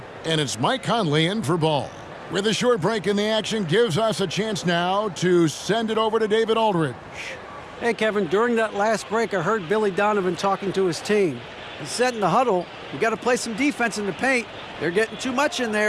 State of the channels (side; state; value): both; identical; correlation 1.00